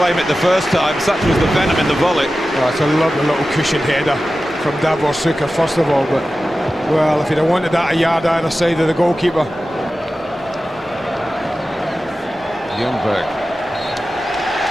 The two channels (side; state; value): both; normal; correlation 0.94